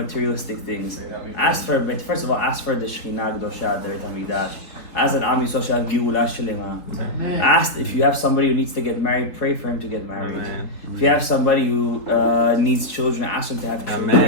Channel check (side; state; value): right; late; 4.0 ms